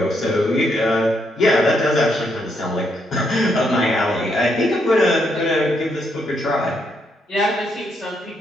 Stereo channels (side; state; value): both; normal; correlation 0.76